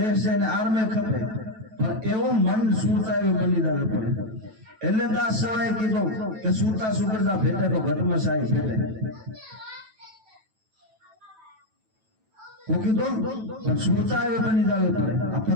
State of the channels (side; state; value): left; late; 9.1 ms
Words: છે એને આર્મે ખપે પણ એવો મન સુરતા એવું બની જવું પડે. એટલે દાસ સવાએ કીધું કે સુરતા સુગરતા ભેટે તો ઘટમાં સાઈ ભેટે. હું કીધું પણ સુરતા એવું બની જવું પડે. આ